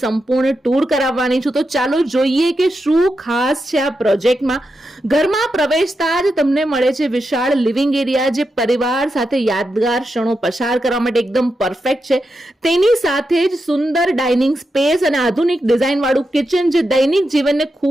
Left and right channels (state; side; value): normal; both; correlation 0.87